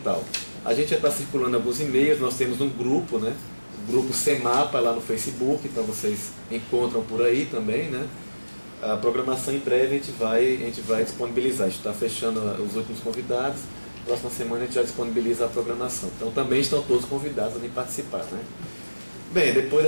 A gente já está circulando alguns e-mails, nós temos um grupo, né, o grupo CEMAPA lá no Facebook, então vocês encontram por aí também, né. A programação em breve a gente vai disponibilizar, a gente está fechando os últimos convidados, próxima semana a gente já disponibiliza a programação. Então também estão todos convidados a vir participar, né. Bem, depois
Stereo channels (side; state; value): both; inverted; correlation -1.00